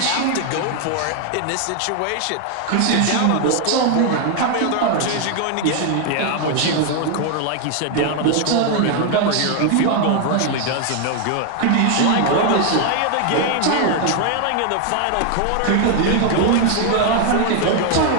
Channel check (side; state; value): both; different; correlation 0.00